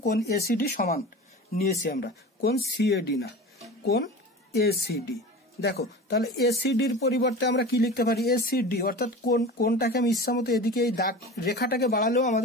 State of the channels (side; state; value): both; normal; correlation 0.33